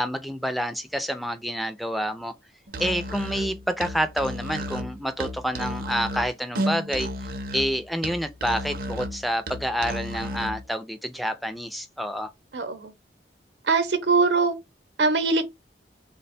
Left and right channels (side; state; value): both; normal; correlation 0.50